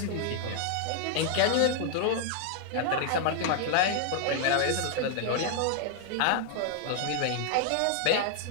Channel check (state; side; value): different; both; correlation 0.00